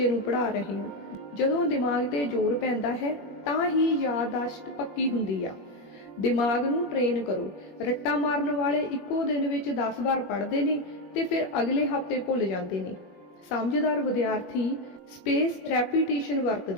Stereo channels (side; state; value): right; late; 21 ms